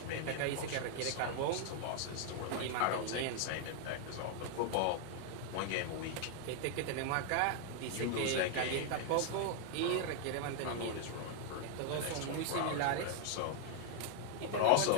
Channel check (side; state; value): both; different; correlation -0.01